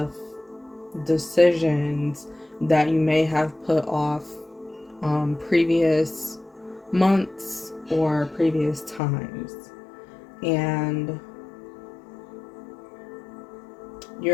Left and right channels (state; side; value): drops out; right; at 9.0 s